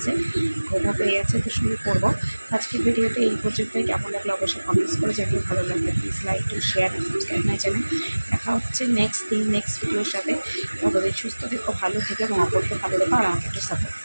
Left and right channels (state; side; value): inverted; both; correlation -1.00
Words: ঘুমও পেয়ে গেছে, তো শুরু করবো। আজকের ভিডিওতে এই পর্যন্তই। কেমন লাগলো অবশ্যই কমেন্টস করে জানিয়ে, ভালো লাগলে please like to share and subscribe my channel. দেখা হচ্ছে নেক্সট ভিডিওর সাথে। তবে সুস্থ থেকো, ভালো থেকো এবং অপরকে ভালো রেখো, আর আমাকে একটু সাপোর্ট